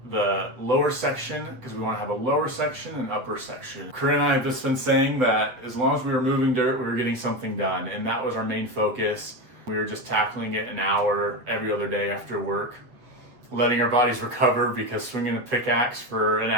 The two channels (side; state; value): left; late; 8.0 ms